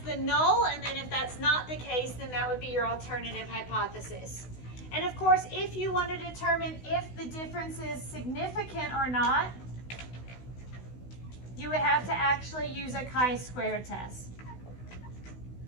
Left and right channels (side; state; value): right; late; 16 ms